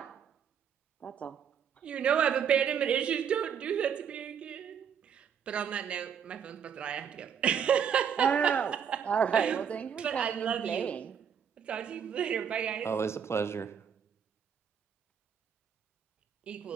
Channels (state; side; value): quieter; left; 7.7 dB